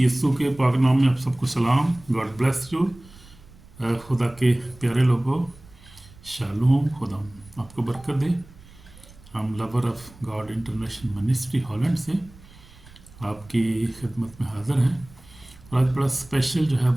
के पाक नाम में आप सबको सलाम। God bless you. खुदा के प्यारे लोगों, शालूम। खुदा आपको बरकत दे। हम lover of God international ministry Holland से आपकी खिदमत में हाज़िर हैं और आज बड़ा स्पेशल जो है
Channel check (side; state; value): right; noise; rumble, 23 dB below the sound